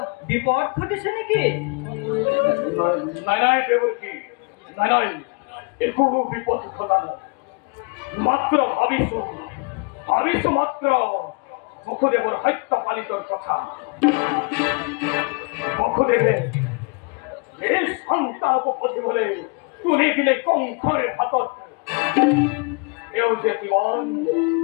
বিপদ ঘটিছে নেকি? নাই নাই দেৱকী, নাই নাই একো বিপদ ঘটা নাই, মাত্ৰ ভাবিছো মাত্ৰ বসুদেৱৰ সত্য পালিতৰ কথা। বসুদেৱে এই সন্তানক পঠিয়াবলৈ তুলি দিলে কংসৰ হাতত। এওঁ যে কিমান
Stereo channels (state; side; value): quieter; right; 32.3 dB